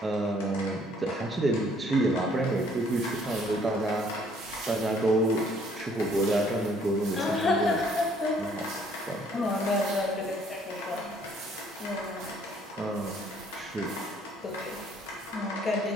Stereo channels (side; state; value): both; normal; correlation 0.62